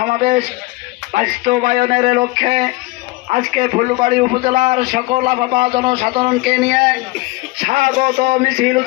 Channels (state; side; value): quieter; right; 21.9 dB